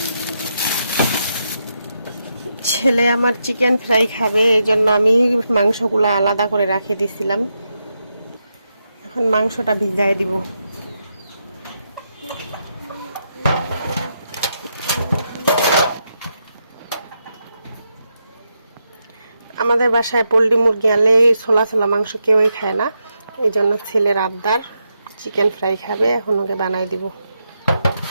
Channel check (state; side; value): inverted; both; correlation -0.83